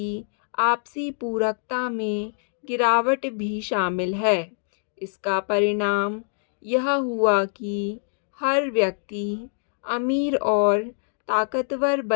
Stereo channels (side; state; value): right; silent; digital silence